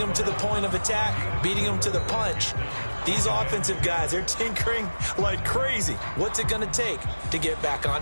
to the point of attack, beating them to the punch. These offensive guys, they're tinkering like crazy. What's it going to take to get back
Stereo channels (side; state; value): both; inverted; correlation -1.00